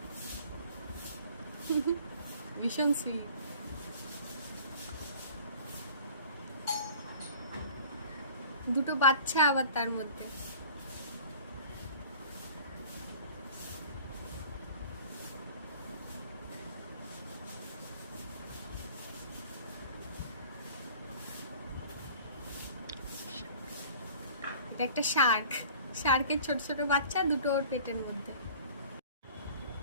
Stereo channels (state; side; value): inverted; both; correlation -0.46